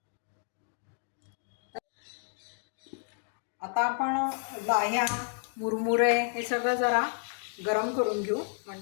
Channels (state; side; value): silent; right; digital silence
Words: आता आपण लाह्या, मुरमुरे हे सगळं जरा गरम करून घेऊ,